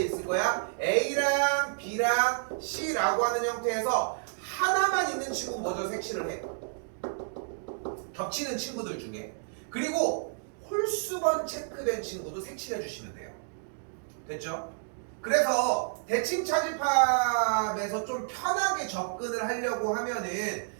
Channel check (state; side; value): silent; left; digital silence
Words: 있을 거야? A랑 B랑 C라고 하는 형태에서 하나만 있는 친구 먼저 색칠을 해. 겹치는 친구들 중에. 그리고 홀수번 체크된 친구도 색칠해 주시면 돼요. 됐죠? 그래서 대칭 차집합에서 좀 편하게 접근을 하려고 하면은